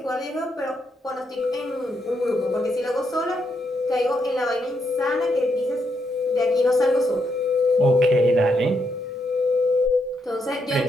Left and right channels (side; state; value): both; normal; correlation 0.79